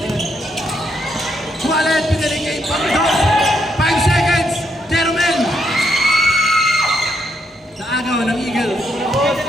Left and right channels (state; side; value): normal; both; correlation 0.77